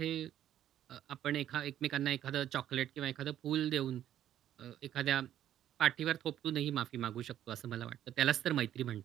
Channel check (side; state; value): left; quieter; 11.4 dB